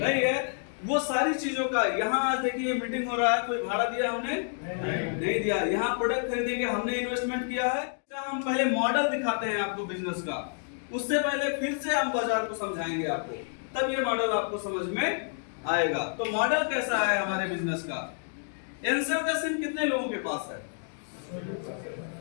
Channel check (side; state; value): right; silent; digital silence